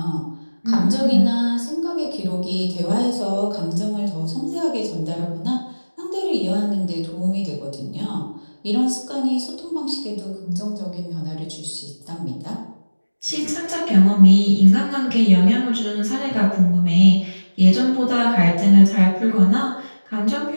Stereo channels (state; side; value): inverted; both; correlation -1.00